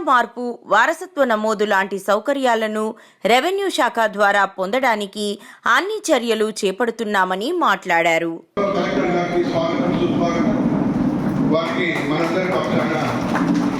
మార్పు, వారసత్వ నమోదు లాంటి సౌకర్యాలను రెవెన్యూ శాఖ ద్వారా పొందడానికి అన్ని చర్యలు చేపడుతున్నామని మాట్లాడారు.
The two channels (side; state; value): both; identical; correlation 1.00